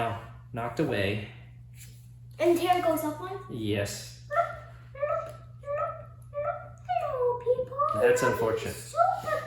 knocked away. And Tara goes up one? Yes. Hello, people. That's unfortunate. Super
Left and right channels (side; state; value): both; identical; correlation 1.00